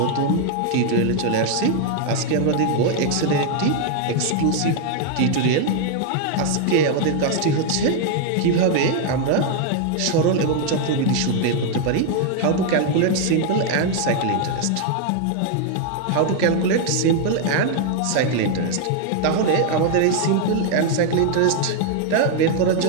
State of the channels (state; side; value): different; both; correlation 0.00